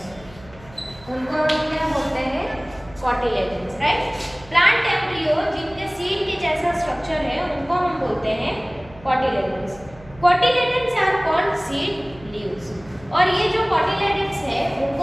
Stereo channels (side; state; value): right; noise; hum, 22 dB below the sound